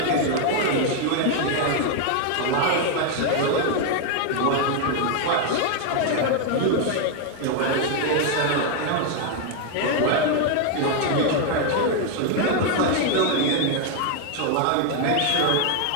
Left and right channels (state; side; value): different; both; correlation 0.01